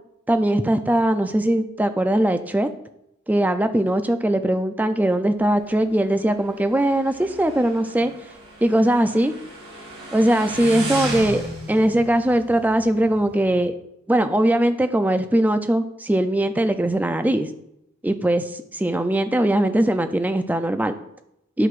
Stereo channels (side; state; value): both; normal; correlation 0.90